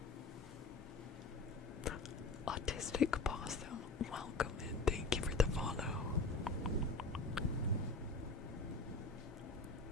Autistic Possum, welcome and thank you for the follow.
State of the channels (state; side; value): quieter; right; 3.4 dB